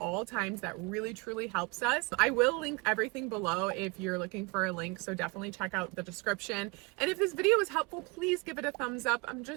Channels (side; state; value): left; quieter; 28.0 dB